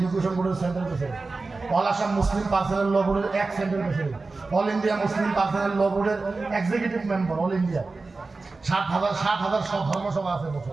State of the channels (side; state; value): left; quieter; 3.7 dB